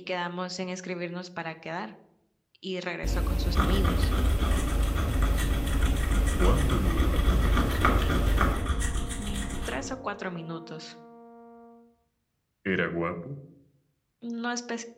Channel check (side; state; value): both; identical; correlation 1.00